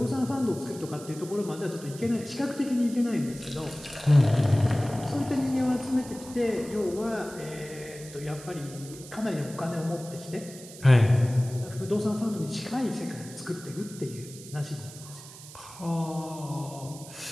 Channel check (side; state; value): right; noise; hiss, 16 dB below the sound